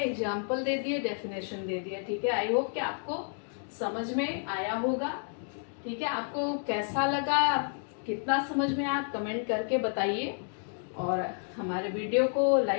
दे दिए, डेफिनेशन दे दिया, ठीक है। आई होप कि आपको समझ में आया होगा, ठीक है। आपको कैसा लगा, कितना समझ में आया, आप कमेंट करके बताइए, और हमारे वीडियो को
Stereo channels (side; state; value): right; silent; 57 dB below the other